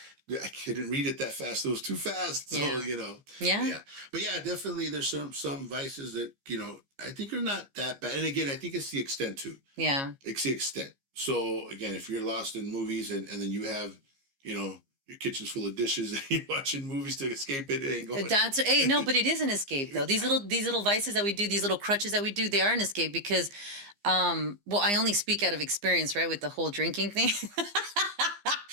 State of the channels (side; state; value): left; late; 15 ms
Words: I couldn't read it that fast. It was too fast. So Yeah. you know. Yeah. Yeah. But yeah, definitely there's some vices that you know I think are not that bad. And again, I think it's the extent too. Yeah. It's the extent. So again, if you're lost in movies and then you have, you know, your kitchen's full of dishes and you're watching movies to escape it, it ain't going. That's hey, no, but it is an escape though. These little vices that we do, these little crutches that we do, they are an escape because well, I only speak out of experience, right, with the whole drinking thing.